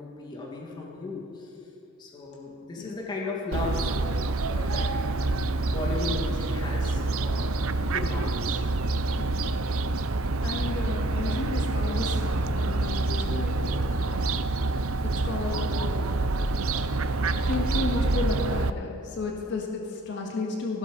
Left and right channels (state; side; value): normal; both; correlation 0.61